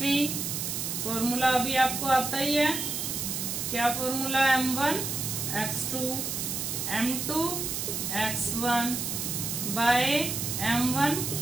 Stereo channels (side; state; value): right; noise; hiss, 2 dB below the sound